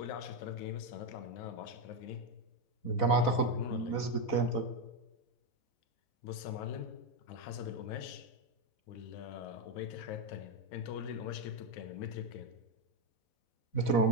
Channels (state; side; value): late; right; 4.1 ms